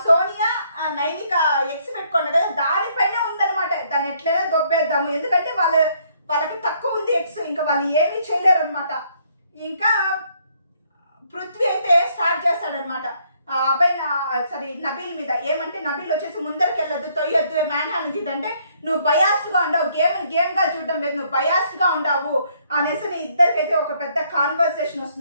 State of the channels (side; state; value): both; inverted; correlation -0.68